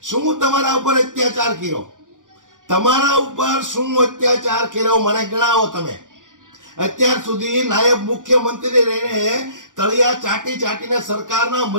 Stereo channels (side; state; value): left; late; 0.88 ms